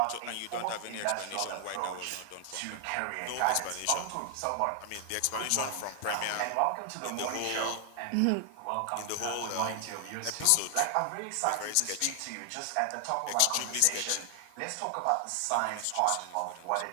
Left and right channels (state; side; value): different; both; correlation 0.00